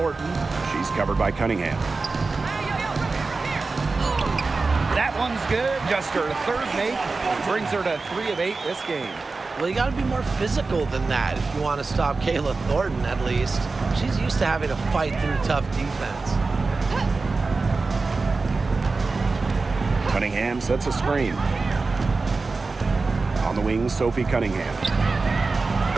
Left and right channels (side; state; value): left; quieter; 3.9 dB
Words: She's covered by Cunningham. That one's good. Just her 3rd make. Brings her to 3 of 8 this game. Well, you got to be more physical than that if you want to stop Kayla Thornton, at least. She's used to having to fight through tough defense. Cunningham sets a screen. On the wing, Sophie Cunningham.